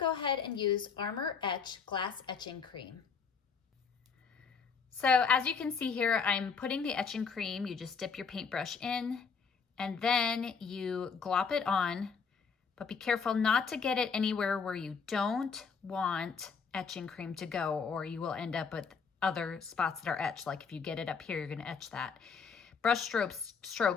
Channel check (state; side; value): quieter; right; 5.7 dB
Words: ahead and use Armor Etch Glass Etching Cream. So as you can see here, I'm putting the etching cream. You just dip your paintbrush in and then you glop it on, but be careful not to get it anywhere where you don't want etching cream to go, or you will end up with other spots that are etched. Like if you get it up here, you're gonna etch that. Brush